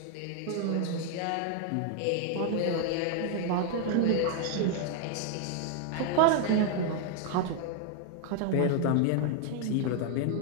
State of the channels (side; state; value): both; different; correlation 0.00